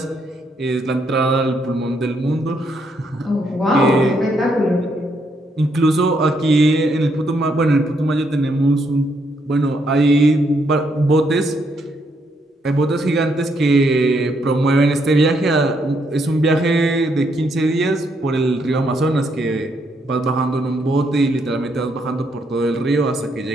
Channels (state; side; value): normal; both; correlation 0.75